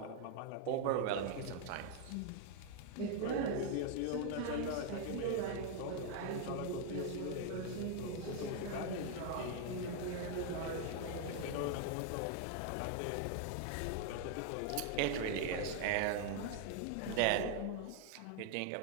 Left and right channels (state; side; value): different; both; correlation 0.00